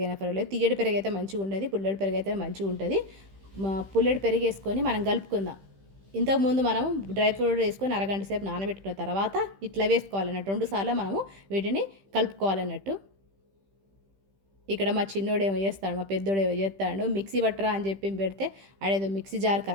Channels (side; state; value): left; late; 15 ms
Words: అయినా పర్వాలేదు. తీయటి పెరుగు అయితే మంచిగా ఉండదు, పుల్లటి పెరుగు అయితే మంచిగా ఉంటుంది. పుల్లటి పెరుగు వేసుకొని మనం కలుపుకుందాం. ఇంతకుముందు మనము డ్రై ఫ్రూట్ వేసుకొని అరగంట సేపు నానబెట్టుకున్న తర్వాత ఇట్లా వేసుకోవాలన్నట్టు. 2 సార్లు మనము వీటిని కలుపుకోవాలన్నట్టు. ఇక్కడ మా చిన్నోడు ఏమో చేస్తాడు, మా పెద్దోడు ఏమో చేస్తాడు. మిక్సీ పట్టరా అని చెప్పి పెడితే ఆడేదో మిక్సీ జార్